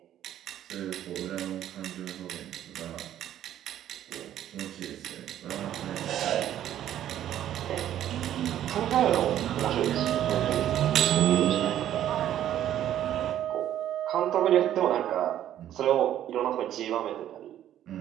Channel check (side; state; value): left; quieter; 11.5 dB